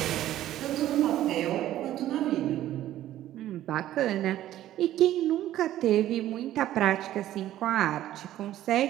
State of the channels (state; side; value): quieter; left; 13.2 dB